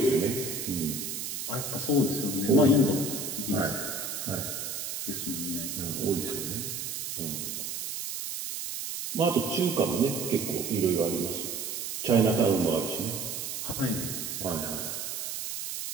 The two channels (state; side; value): noise; right; hiss, 5 dB below the sound